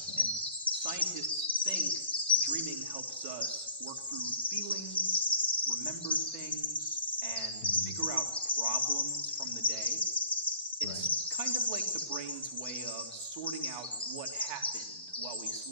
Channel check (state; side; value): inverted; both; correlation -0.51